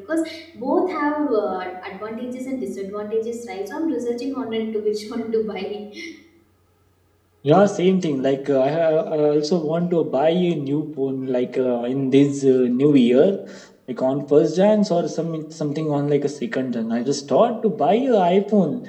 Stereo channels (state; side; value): identical; both; correlation 1.00